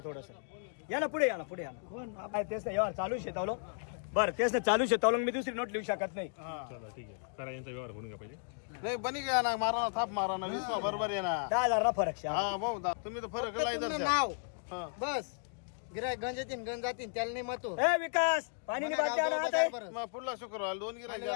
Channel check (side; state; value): right; silent; digital silence